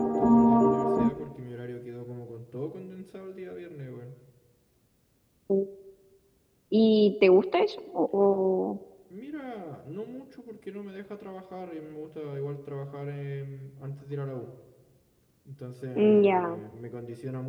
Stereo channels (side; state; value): both; identical; correlation 1.00